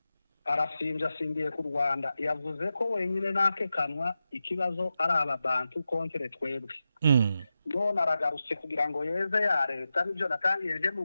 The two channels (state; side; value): inverted; both; correlation -0.91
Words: arasimbiye ku Rwanda, yavuze ko wenyine nakekanwa ikibazo ari ababantu kontre twebwe. None aragarutse kugira ngo yeze ya leta, nibyo natangiye nje